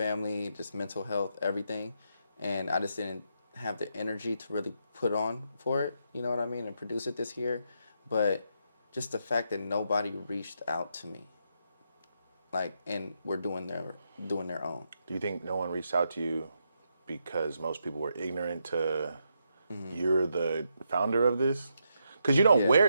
just mental health, everything, and I just didn't have the energy to really put on for it. You know what I mean? And produce it this year, but just the fact that nobody reached out to me, like, and we're doing their own. Do you think no one reached out to you because most people were ignorant to you're the founder of this? Because you don't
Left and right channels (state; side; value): inverted; both; correlation -0.80